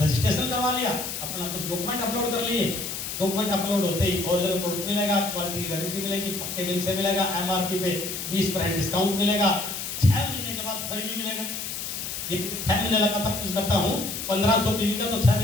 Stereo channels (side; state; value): left; noise; hiss, 5 dB below the sound